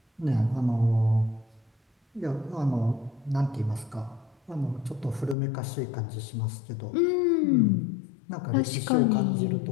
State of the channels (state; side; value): drops out; right; at 5.4 s